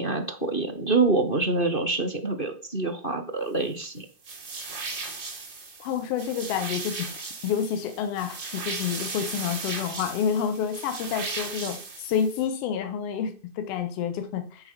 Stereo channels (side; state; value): right; late; 2.5 ms